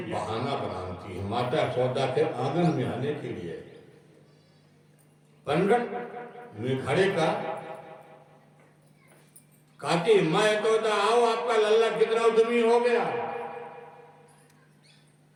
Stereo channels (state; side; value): identical; both; correlation 1.00